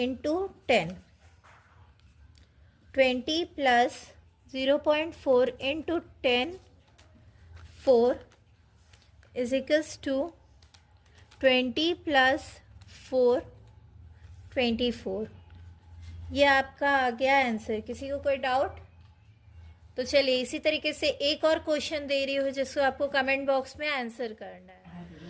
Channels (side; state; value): both; identical; correlation 1.00